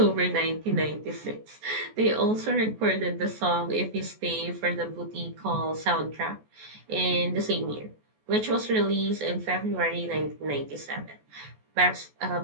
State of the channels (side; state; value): left; late; 14 ms